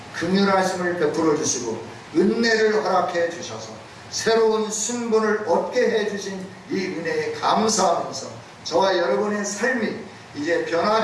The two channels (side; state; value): both; identical; correlation 1.00